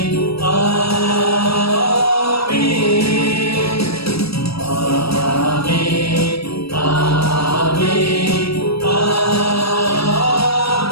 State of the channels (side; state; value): right; late; 0.76 ms